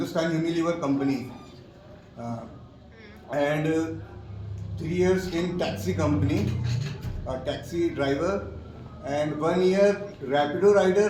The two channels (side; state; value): both; identical; correlation 1.00